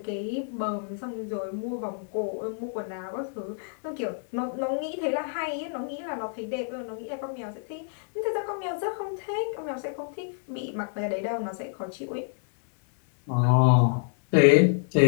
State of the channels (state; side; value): silent; right; digital silence